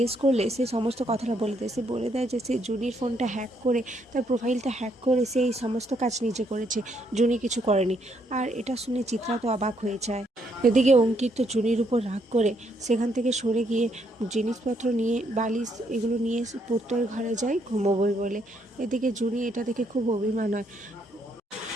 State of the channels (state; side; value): normal; both; correlation 0.73